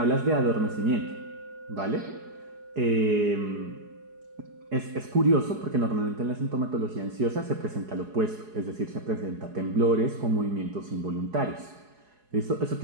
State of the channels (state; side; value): late; left; 4.8 ms